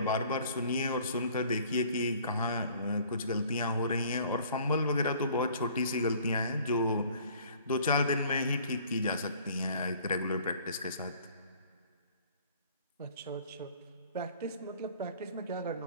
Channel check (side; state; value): both; inverted; correlation -0.53